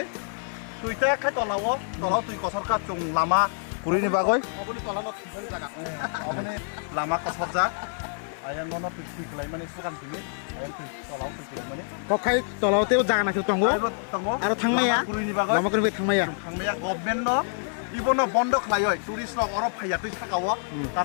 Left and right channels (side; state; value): right; silent; 60 dB below the other